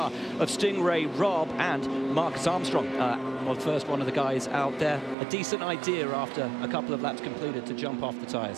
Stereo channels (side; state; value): left; drops out; at 5.2 s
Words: of Stingray, Rob, and Marcus Armstrong. Well, first one of the guys out there. A decent idea after a couple of laps completed to jump off the